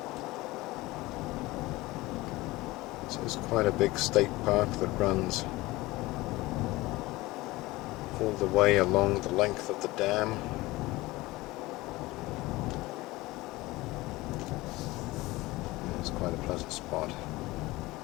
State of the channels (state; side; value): quieter; right; 20.0 dB